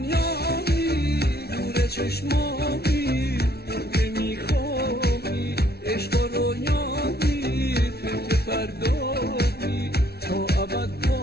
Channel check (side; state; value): right; late; 0.46 ms